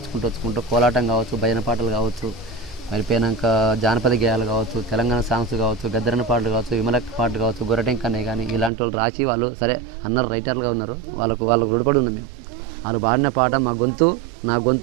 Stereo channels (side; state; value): left; drops out; at 8.7 s